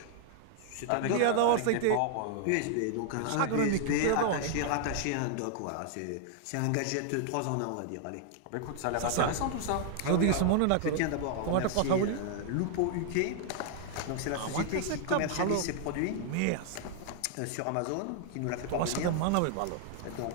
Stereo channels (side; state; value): both; different; correlation 0.00